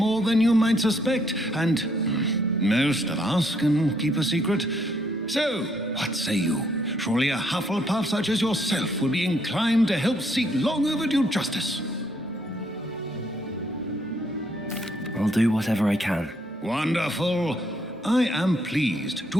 than you might suspect, and most of us can keep a secret. So, what say you? Surely a Hufflepuff such as yourself would be inclined to help seek long overdue justice. I'll do whatever I can. Wonderful. I am pleased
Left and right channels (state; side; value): normal; both; correlation 0.70